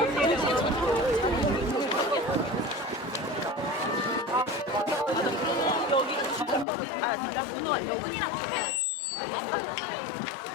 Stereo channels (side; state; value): right; drops out; at 6.7 s